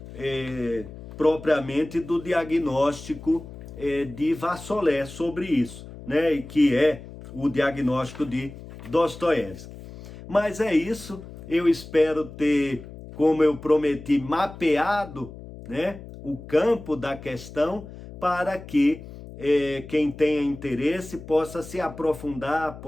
propriamente do diagnóstico de Vassolé sobre isso, né? Que é o diagnóstico de Dostoiévski. Mas é isso, eu espero ter, como eu prometi, mapeado, né, o campo da questão para que quem tenha interesse possa se aprofundar,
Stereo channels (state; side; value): noise; left; hum, 15 dB below the sound